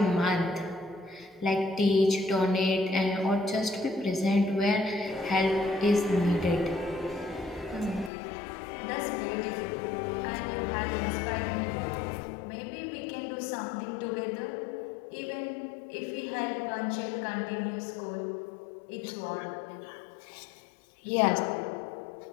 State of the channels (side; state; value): right; drops out; at 8.1 s